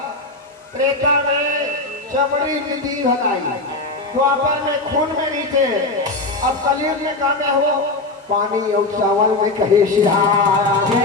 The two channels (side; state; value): right; quieter; 3.2 dB